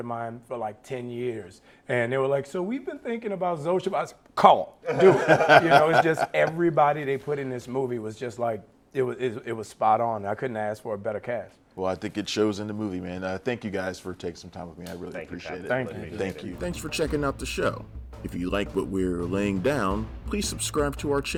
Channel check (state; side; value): identical; both; correlation 1.00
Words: mine for like 10 years. And they were like, so we've been thinking about Zosha. I said, call, do it. It's just everybody they put in this movie was just like, it was spot on. I couldn't ask for a better cast. Well, I think it shows in the movie, man. Thank you guys for taking some time with me. I really appreciate it. Thank you. Thanks for checking out the show. If you like what we're laying down, please subscribe to our